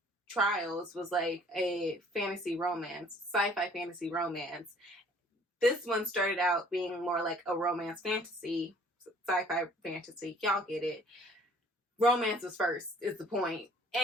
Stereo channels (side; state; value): both; normal; correlation 0.55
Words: Trials was like a fantasy romance, sci-fi fantasy romance. This one started out being more like a romance fantasy, sci-fi fantasy. Y'all get it. Romance was first, is the point.